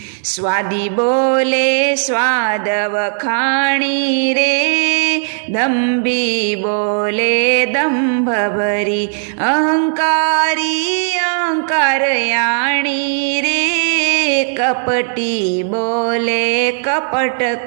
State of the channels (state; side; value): silent; left; digital silence